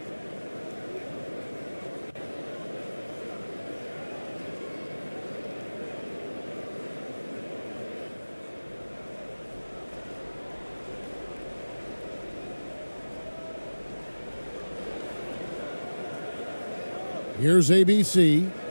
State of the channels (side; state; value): both; inverted; correlation -1.00